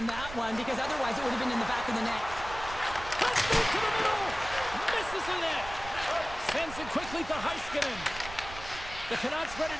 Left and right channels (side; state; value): right; noise; rumble, 13 dB below the sound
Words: that one because otherwise it would have been in the back of the net. Let's move to the middle. Misses the net. Sends it quickly to Heiskanen. The Canucks ready